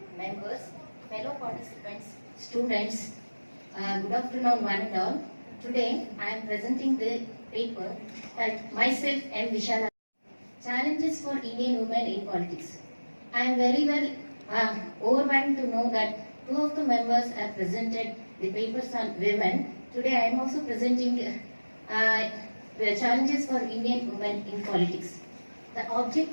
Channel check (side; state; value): both; inverted; correlation -1.00